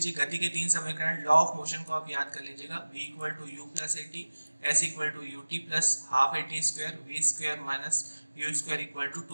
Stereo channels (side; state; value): both; inverted; correlation -1.00